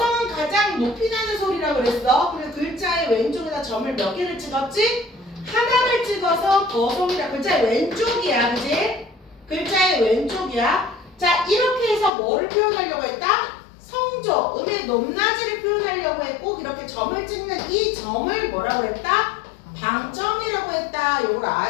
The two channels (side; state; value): right; drops out; at 12.1 s